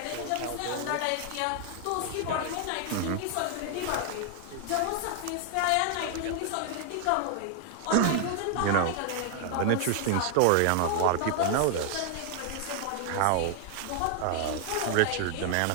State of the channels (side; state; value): both; different; correlation 0.00